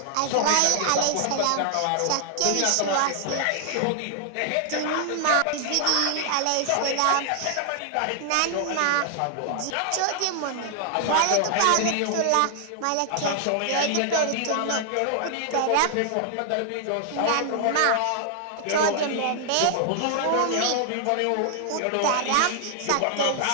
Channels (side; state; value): both; different; correlation 0.00